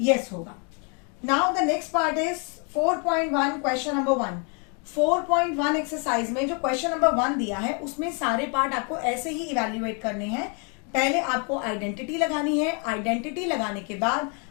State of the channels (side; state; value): right; quieter; 36.6 dB